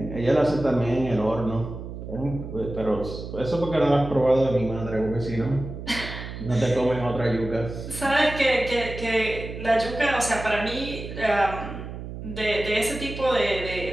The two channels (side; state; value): right; noise; hum, 9 dB below the sound